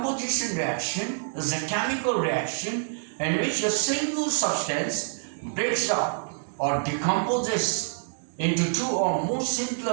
reaction is a chemical reaction in which a single substance breaks up or decomposes into two or more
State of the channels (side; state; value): left; silent; digital silence